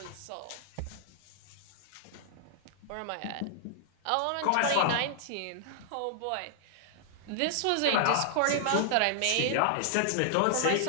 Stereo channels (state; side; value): different; both; correlation -0.01